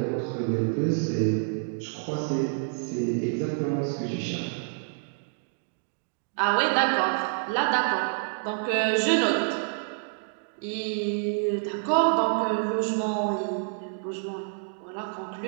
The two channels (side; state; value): left; silent; digital silence